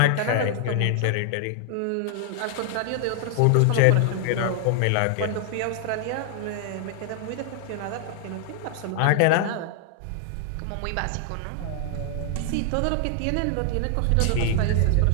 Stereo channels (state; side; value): different; both; correlation 0.00